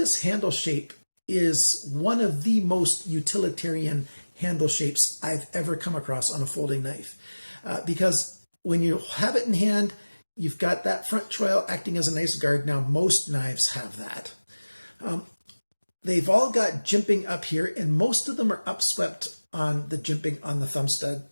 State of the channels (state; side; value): inverted; both; correlation -1.00